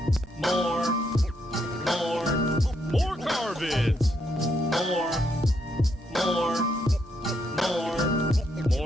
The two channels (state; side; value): normal; both; correlation 0.76